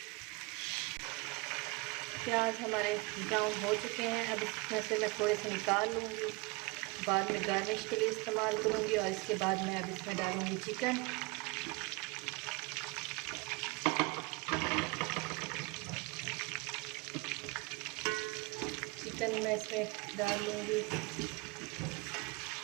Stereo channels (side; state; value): left; quieter; 26.1 dB